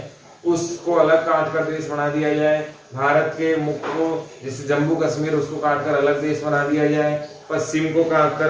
उसको अलग काटकर देश बना दिया जाए। भारत के मुख्य को, जैसे जम्मू कश्मीर, उसको काटकर अलग देश बना दिया जाए, पश्चिम को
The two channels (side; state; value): both; identical; correlation 1.00